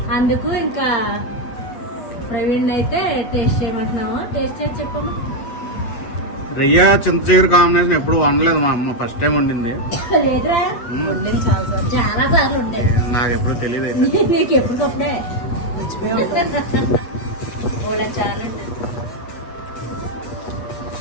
అందుకు ఇంకా ప్రవీణ్ అయితే టేస్ట్ చేయమంటున్నాము. టేస్ట్ చేసి చెప్పండి. రొయ్య చింత చిగురు కాంబినేషన్ ఎప్పుడు వండలేదు మా అమ్మ, ఫస్ట్ టైం వండింది. లేదురా, చాలా సార్లు ఉంటాయి. నాకు ఎప్పుడు తెలియదు అయితే. నీకు ఎప్పటికప్పుడే చాలండి.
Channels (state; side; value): late; right; 8.3 ms